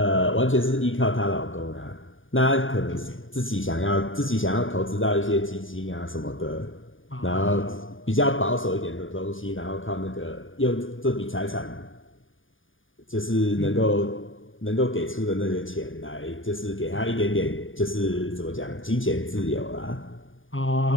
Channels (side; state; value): right; late; 0.58 ms